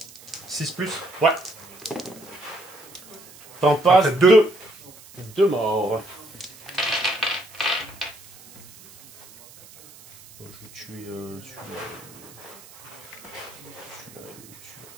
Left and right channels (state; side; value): noise; right; hiss, 21 dB below the sound